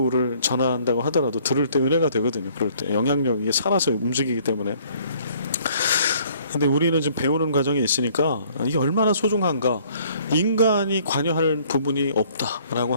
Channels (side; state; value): both; inverted; correlation -0.60